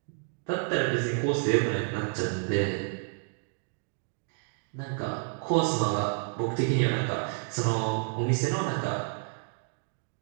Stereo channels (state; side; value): silent; left; 58 dB below the other